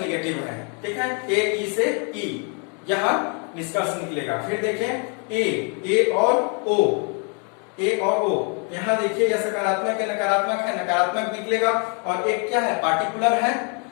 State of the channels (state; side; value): quieter; right; 37.3 dB